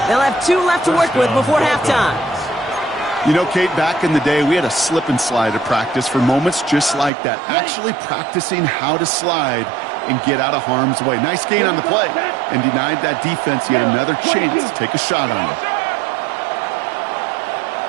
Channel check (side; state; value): left; drops out; at 7.1 s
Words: They'll have 2 left to work with before halftime. You know, Kate, back in the day, we had a slip and slide at practice for moments just like that. Actually practicing how to slide and get out of harm's way. Nice gain on the play and denied that defense yet another chance to take a shot on him.